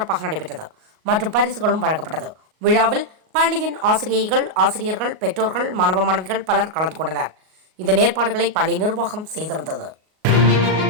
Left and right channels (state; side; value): late; left; 38 ms